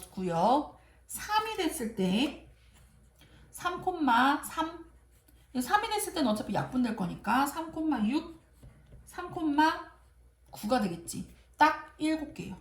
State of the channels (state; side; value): identical; both; correlation 1.00